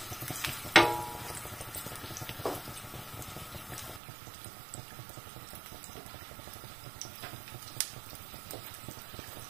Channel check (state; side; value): drops out; left; at 4.0 s